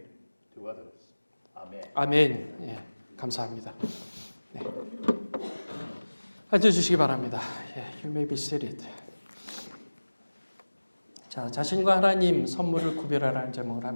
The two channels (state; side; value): inverted; both; correlation -1.00